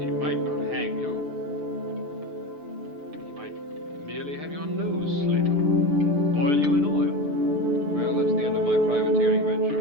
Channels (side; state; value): left; late; 6.8 ms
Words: he might not hang you. He might merely have your nose slit off. Boil you in oil. Well, that's the end of my privateering